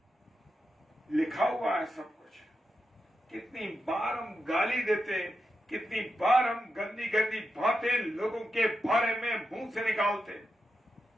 लिखा हुआ है सब कुछ। कितनी बार हम गाली देते हैं, कितनी बार हम गंदी गंदी बातें लोगों के बारे में मुंह से निकालते हैं।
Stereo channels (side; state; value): both; normal; correlation 0.88